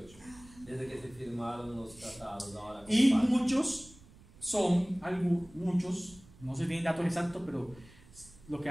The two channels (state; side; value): noise; right; rumble, 23 dB below the sound